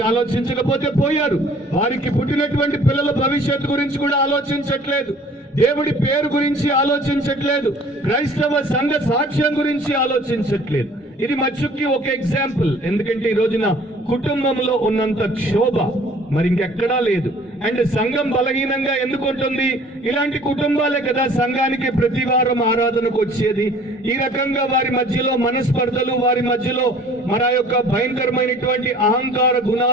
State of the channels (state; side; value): normal; both; correlation 0.52